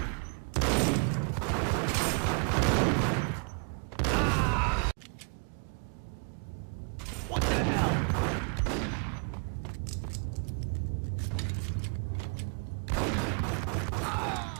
What the hell?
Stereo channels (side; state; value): left; quieter; 39.2 dB